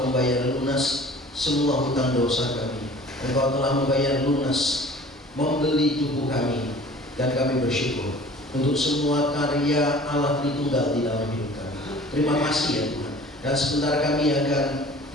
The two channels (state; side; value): normal; both; correlation 0.47